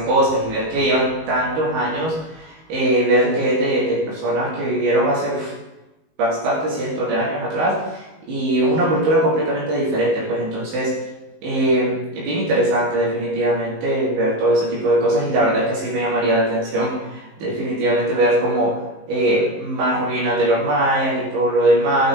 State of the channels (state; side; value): late; left; 19 ms